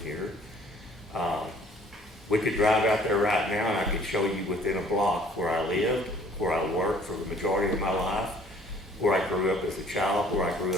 We could drive out there right now and I could show you within a block where I lived, where I worked for the majority of my life, where I grew up as a child, where I grew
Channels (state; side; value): normal; both; correlation 0.56